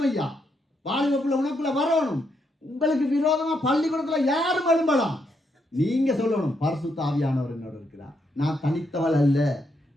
ஐயா. வாழ்வுக்குள்ள உனக்குள்ள வரணும். உங்களுக்கு விரோதமா பள்ளிக்கூடத்துல யாரும் எழும்பலாம். நீங்க சொல்லணும், பரிசுத்த ஆவியானவர் என்னோடு இருக்கிறார். நான் தனித்தவள் அல்ல,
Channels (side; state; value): both; normal; correlation 0.78